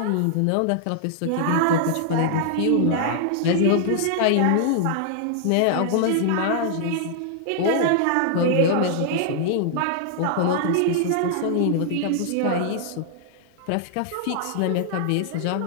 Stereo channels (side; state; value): both; different; correlation -0.01